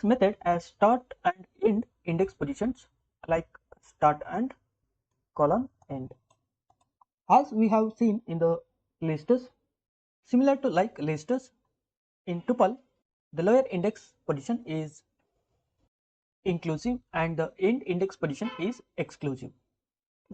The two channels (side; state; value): both; identical; correlation 1.00